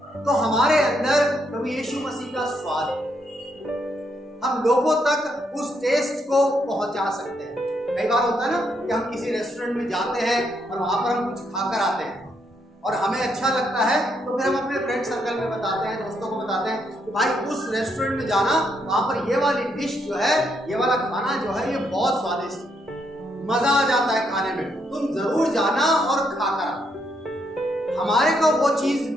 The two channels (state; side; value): normal; both; correlation 0.76